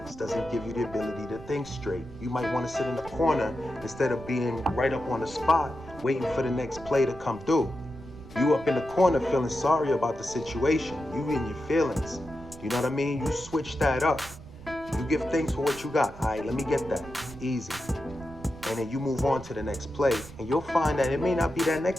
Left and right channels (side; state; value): right; noise; rumble, 17 dB below the sound